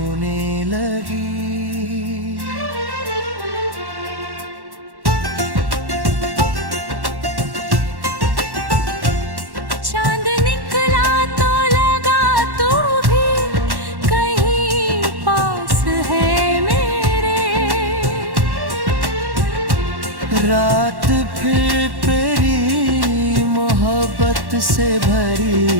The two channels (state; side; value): late; left; 1.1 ms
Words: लगी। रात फिर तेरी मोहब्बत से